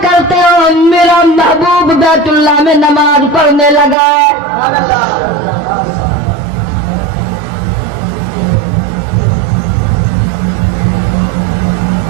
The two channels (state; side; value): drops out; left; at 4.0 s